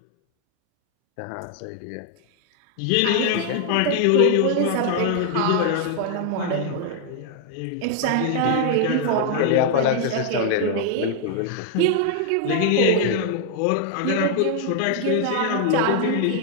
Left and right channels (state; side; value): different; both; correlation 0.00